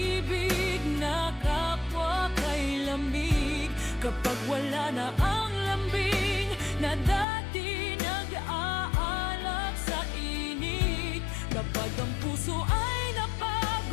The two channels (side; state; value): right; drops out; at 7.2 s